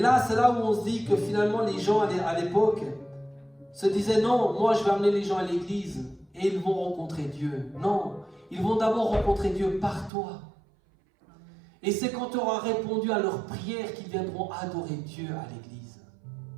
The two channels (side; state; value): left; drops out; at 10.1 s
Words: c'est là où on se dit que finalement les gens à l'époque se disaient non, moi je vais amener les gens à l'église et ils vont rencontrer Dieu. Non, ils vont d'abord rencontrer Dieu par toi. Et c'est quand tu auras répondu à leurs prières qu'ils viendront adorer Dieu à l'église.